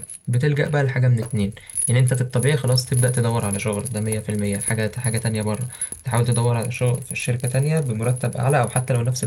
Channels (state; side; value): identical; both; correlation 1.00